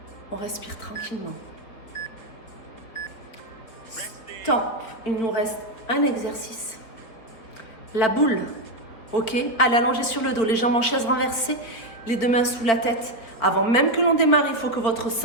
On respire tranquillement. Stop. Il nous reste un exercice. La boule. Ok? Allez, allongez sur le dos. Les jambes en chaise renversée. Les deux mains sous la tête. Avant même que l'on démarre, il faut que votre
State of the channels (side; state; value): right; late; 4.7 ms